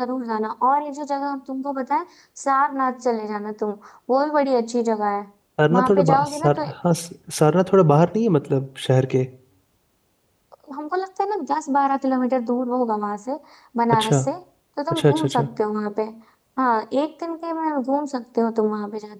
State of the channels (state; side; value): identical; both; correlation 1.00